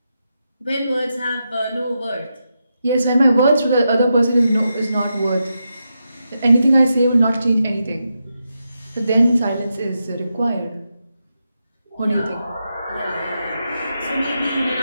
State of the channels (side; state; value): both; inverted; correlation -0.86